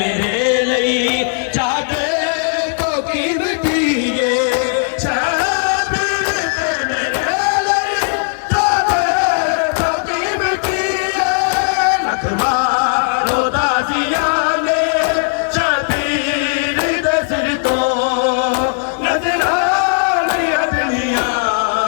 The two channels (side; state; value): right; silent; 69 dB below the other